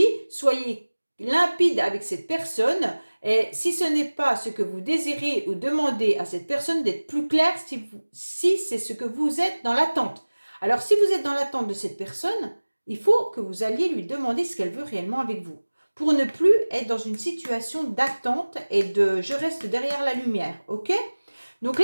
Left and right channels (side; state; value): both; inverted; correlation -1.00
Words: soyez limpide avec cette personne. Et si ce n'est pas ce que vous désirez ou demandez à cette personne d'être plus clair si c'est ce que vous êtes dans l'attente. Alors si vous êtes dans l'attente de cette personne, il faut que vous alliez lui demander ce qu'elle veut réellement avec vous. Pour ne plus être dans une situation d'attente et de je reste derrière la lumière, ok? Donc